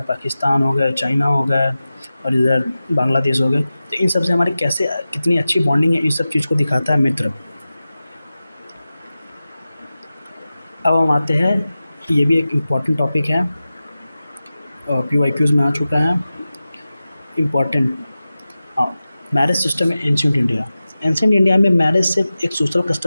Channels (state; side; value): inverted; both; correlation -0.95